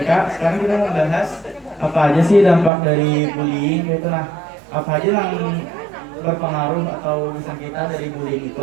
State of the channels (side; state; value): left; drops out; at 2.7 s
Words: sekarang kita mau bahas apa aja sih dampak dari bullying gitu. Nah, apa aja yang berpengaruh atau bisa kita dari bullying